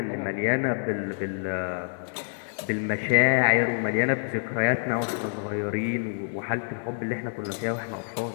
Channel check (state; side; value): silent; right; 56 dB below the other